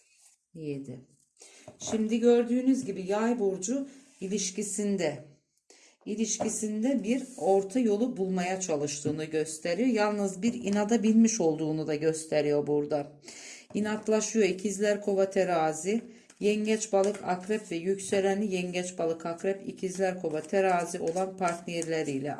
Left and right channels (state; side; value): identical; both; correlation 1.00